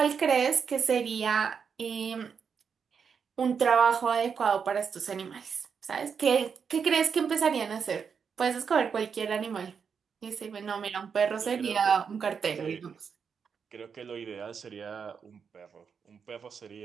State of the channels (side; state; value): left; quieter; 6.4 dB